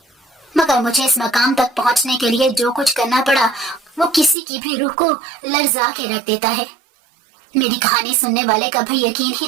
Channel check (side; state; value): left; drops out; at 4.4 s